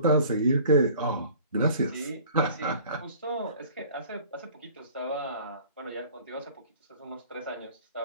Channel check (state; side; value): inverted; both; correlation -0.48